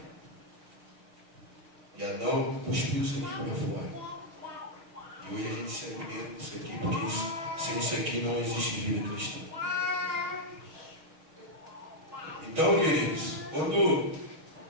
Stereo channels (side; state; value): left; late; 6.2 ms